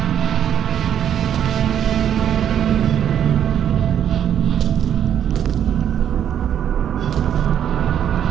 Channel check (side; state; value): left; quieter; 9.6 dB